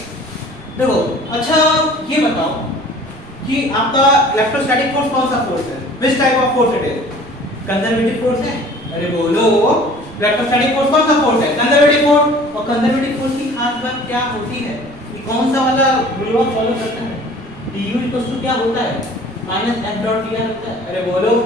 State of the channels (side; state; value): right; noise; rumble, 23 dB below the sound